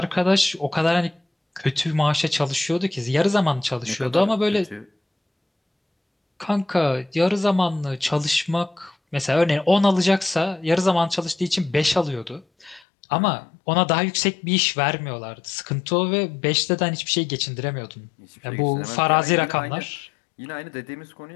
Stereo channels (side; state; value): right; drops out; at 12.8 s